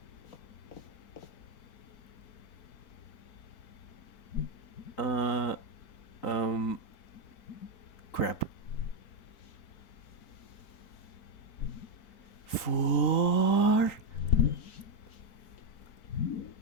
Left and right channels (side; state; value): right; late; 3.9 ms